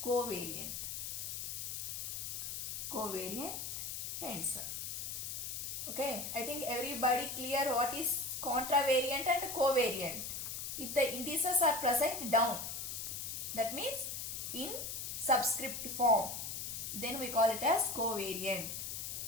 covariant. Covariant tensor. Okay, I think everybody clear what is contravariant and covariant. If the indices are present down, that means in subscript form, then we call it as covariant.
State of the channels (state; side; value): noise; left; hiss, 5 dB below the sound